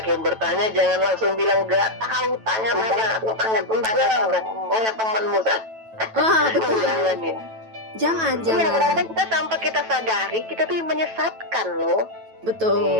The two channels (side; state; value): left; late; 9.1 ms